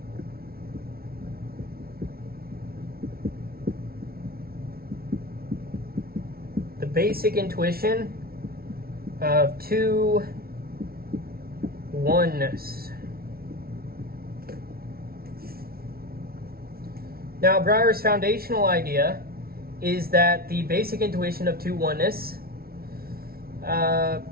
The basic intuition of two oneness. Now, Brouwer's foundational idea is that the basic intuition of two oneness, it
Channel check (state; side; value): late; left; 0.44 ms